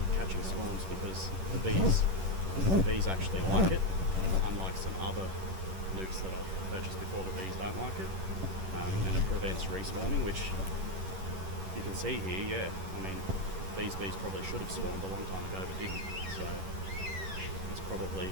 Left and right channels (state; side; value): late; left; 11 ms